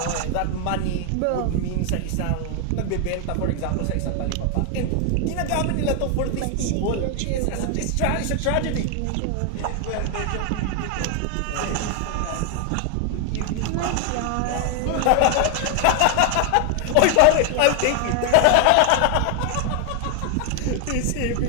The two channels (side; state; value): both; different; correlation 0.00